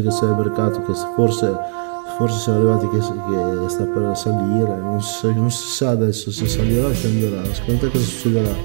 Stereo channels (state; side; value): silent; left; digital silence